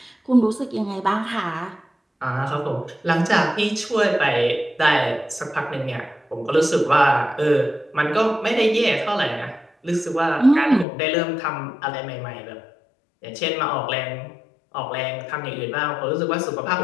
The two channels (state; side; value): drops out; right; at 10.9 s